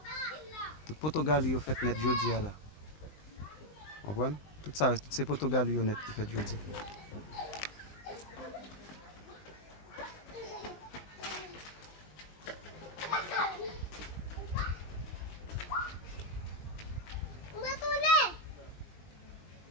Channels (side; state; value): right; late; 20 ms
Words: Tout poto gali yo fait net jodi ya la. Comprenez? Tout ça, tout ces poto gali yo net qui fait jodi.